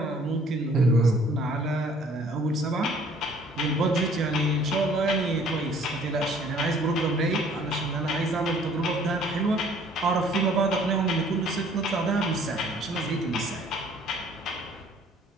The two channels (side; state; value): both; normal; correlation 0.57